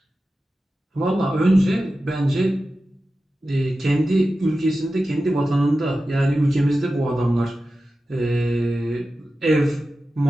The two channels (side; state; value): both; normal; correlation 0.93